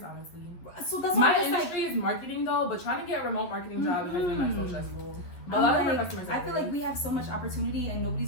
honestly. So that's My why I'm just industry is marketing though, but trying to get a remote marketing job has been like so stressful. But a I'm lot of them are like, customer service. I feel like we have so much opportunity and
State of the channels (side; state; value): right; late; 11 ms